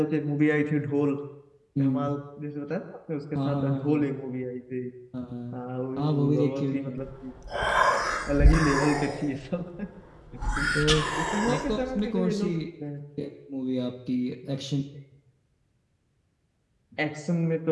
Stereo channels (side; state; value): both; identical; correlation 1.00